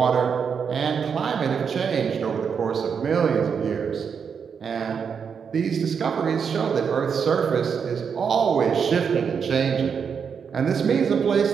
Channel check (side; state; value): left; quieter; 6.6 dB